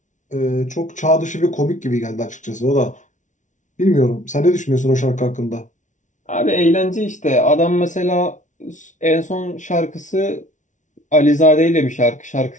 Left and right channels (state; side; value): late; right; 0.36 ms